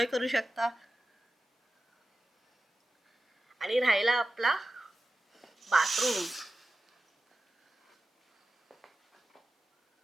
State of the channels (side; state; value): both; normal; correlation 0.93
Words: करू शकता. आणि राहिला आपला बाथरूम.